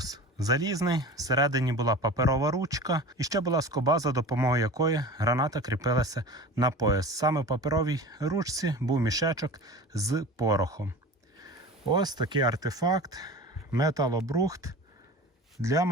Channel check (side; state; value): both; normal; correlation 0.36